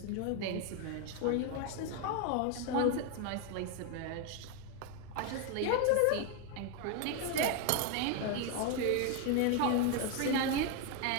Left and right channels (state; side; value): different; both; correlation 0.01